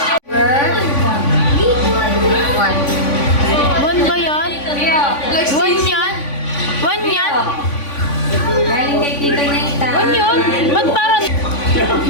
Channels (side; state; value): right; late; 3.5 ms